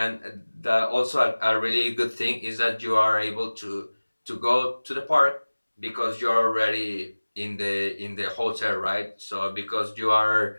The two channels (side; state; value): both; inverted; correlation -1.00